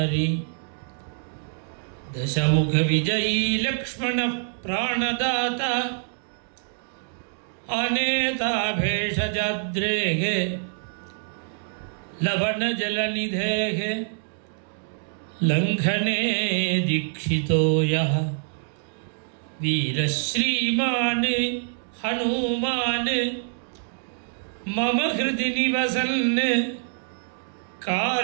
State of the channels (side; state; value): left; silent; digital silence